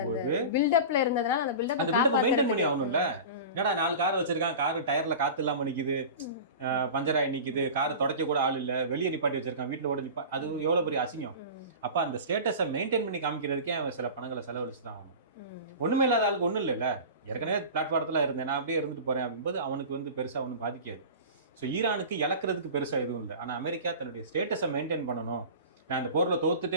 பில்டப்ல இருந்ததுனால அந்த பில்டப்பை மெயின்டைன் பண்ணி ஆகணும்ல. என்னடா 4 கார் வச்சிருக்கான், காரு டயர்ல காத்து இல்லாம நிக்குது, பஞ்சராய் நிக்குது, கார் துடைக்க கூட ஆள் இல்ல, வெளியே நிப்பாட்டி வச்சிருக்கான், வீட்டுல கூட அது எவ்வளவு பெரிய அசிங்கம். அப்ப அந்த ஸ்டேட்டஸை மெயின்டைன் பண்ணி காமிக்கிறதுக்கே அவன் சில பணங்களை செலவழிச்சு தான் ஆகணும். ஒண்ணுமே இல்லாத ஆளுக்கு ஒண்ணும் இல்லைல்ல. ஏற்கனவே பிளாட்ஃபாரத்துல இருந்தேன், நான் அப்படியே இருந்துட்டு போறேன் அப்படின்போது அவனுக்கு வந்து பெருசா ஒன்றும் பாதிக்காது. ஸோ ஈரானுக்கு இழக்கிறதுக்கு பெருசா எதுவும் இல்லை. ஆனா அமெரிக்கா தன்னுடைய ஸ்டேட்டஸை மெயின்டைன் பண்ணணும், நான் இந்த போர்ல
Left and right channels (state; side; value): inverted; both; correlation -0.33